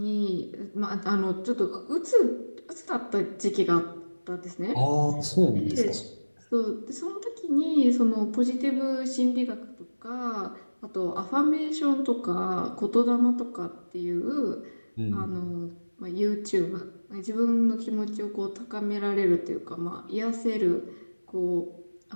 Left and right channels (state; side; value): inverted; both; correlation -1.00